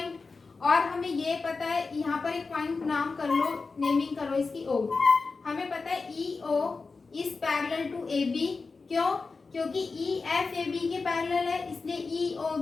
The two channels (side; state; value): right; quieter; 4.3 dB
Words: और हमें ये पता है, यहाँ पर एक पॉइंट नाम कर लो, नेमिंग करो इसकी O। हमें पता है EO is parallel to AB। क्यों, क्योंकि EF AB के पैरेलल है, इसलिए EO